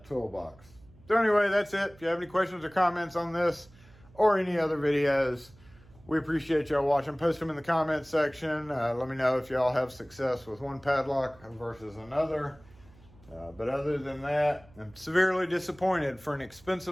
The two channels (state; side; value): noise; right; hum, 25 dB below the sound